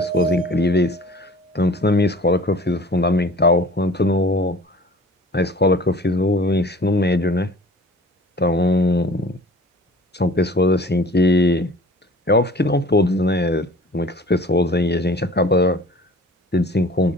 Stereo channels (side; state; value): both; normal; correlation 0.46